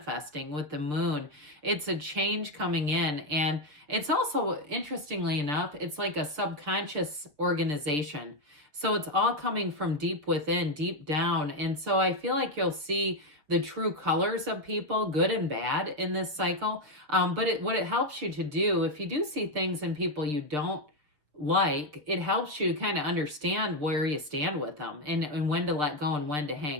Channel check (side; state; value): left; late; 6.7 ms